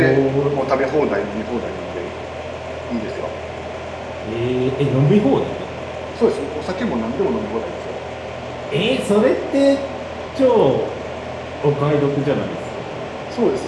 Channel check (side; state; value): both; identical; correlation 1.00